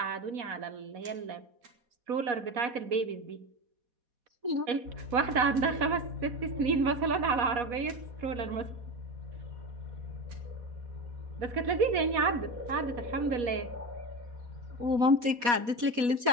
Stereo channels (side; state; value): left; late; 4.1 ms